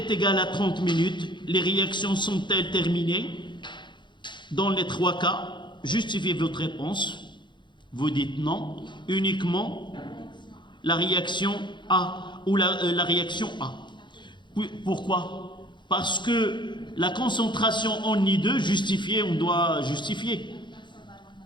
égale à 30 minutes, les réactions sont-elles terminées? Dans les 3 cas, justifiez votre réponse. Vous dites non, uniquement la réaction A ou la réaction A. Pourquoi? Parce que la concentration en I2 justifiée, on doit justifier.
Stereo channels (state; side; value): late; right; 0.23 ms